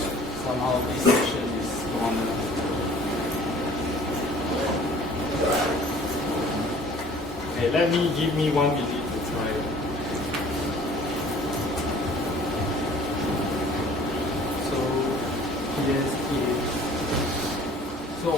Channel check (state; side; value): normal; both; correlation 0.51